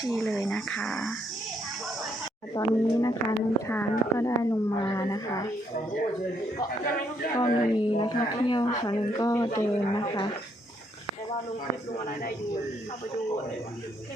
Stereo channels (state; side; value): normal; both; correlation 0.73